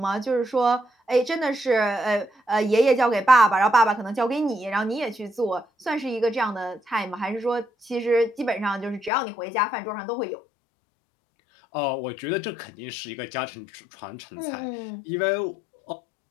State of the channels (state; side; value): drops out; right; at 9.1 s